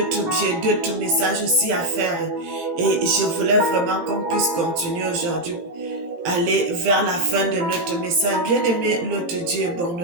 d'autres messages aussi à faire. Et je voulais vraiment qu'on puisse continuer aujourd'hui, aller vers la fin de notre message. Bien-aimé, notre Dieu est bon,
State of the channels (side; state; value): left; late; 18 ms